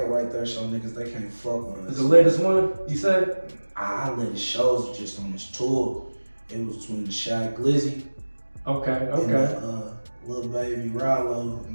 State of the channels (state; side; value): inverted; both; correlation -1.00